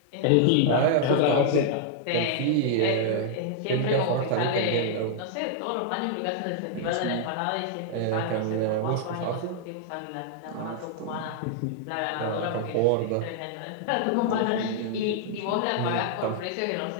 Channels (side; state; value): both; different; correlation -0.01